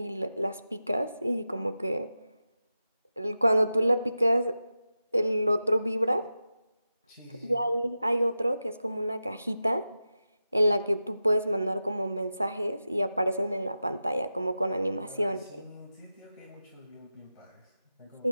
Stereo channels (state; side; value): inverted; both; correlation -0.92